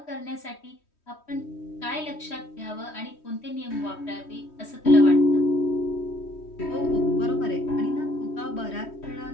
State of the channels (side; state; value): right; late; 3.1 ms